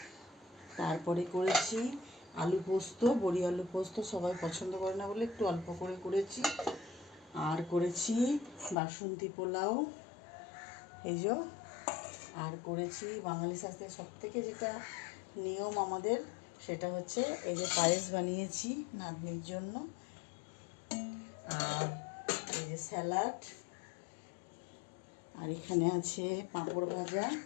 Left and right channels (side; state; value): right; drops out; at 8.8 s